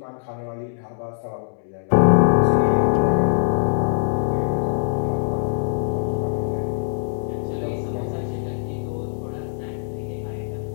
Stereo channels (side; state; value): right; silent; 64 dB below the other